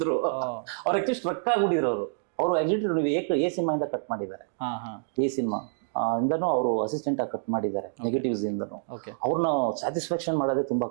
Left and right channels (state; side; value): silent; left; digital silence